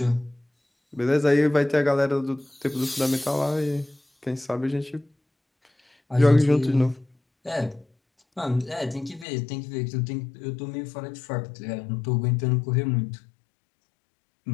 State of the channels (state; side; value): drops out; right; at 9.2 s